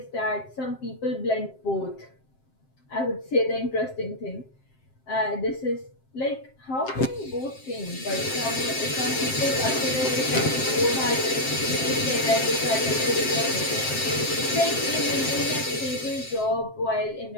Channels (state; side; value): late; right; 7.6 ms